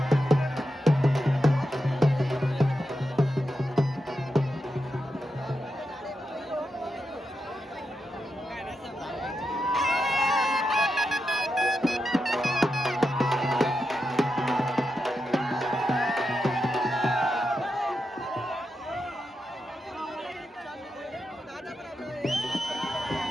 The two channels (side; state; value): both; normal; correlation 0.87